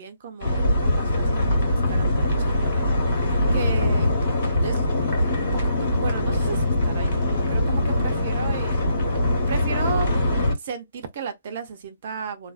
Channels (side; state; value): both; inverted; correlation -0.75